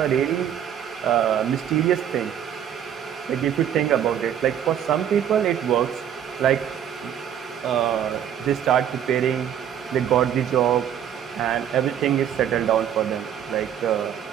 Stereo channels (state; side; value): quieter; left; 9.5 dB